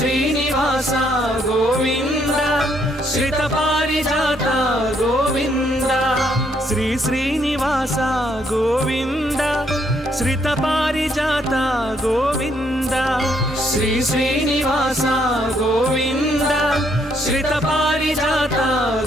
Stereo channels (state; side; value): normal; both; correlation 0.71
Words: గోవింద శ్రిత పారిజాత గోవింద శ్రీ శ్రీనివాస గోవింద శ్రిత పారిజాత గోవింద శ్రీ శ్రీనివాస గోవింద శ్రిత పారిజాత